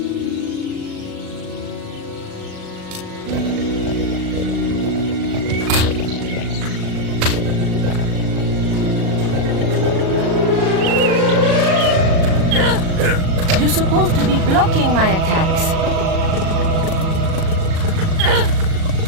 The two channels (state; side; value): late; left; 37 ms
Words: You're supposed to be blocking my attacks.